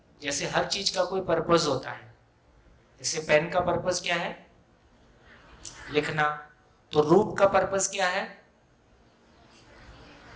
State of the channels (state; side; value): identical; both; correlation 1.00